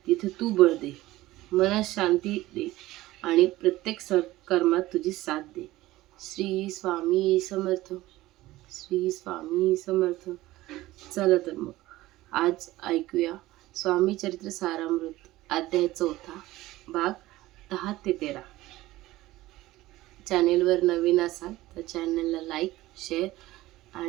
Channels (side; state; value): left; quieter; 17.2 dB